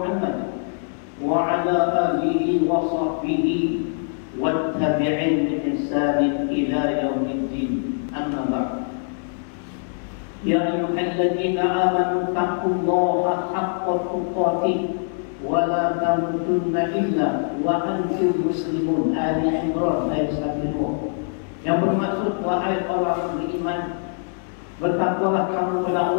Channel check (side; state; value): right; silent; digital silence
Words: وعلى آله وصحبه والتابعين بإحسان إلى يوم الدين. أما بعد، يا أيها الذين آمنوا اتقوا الله حق تقاته ولا تموتن إلا وأنتم مسلمون. آل عمران ayat 1. Yang bermaksud wahai wahai orang beriman, bertakwalah kamu kepada